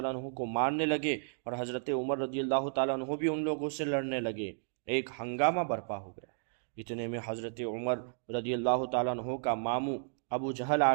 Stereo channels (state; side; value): silent; left; digital silence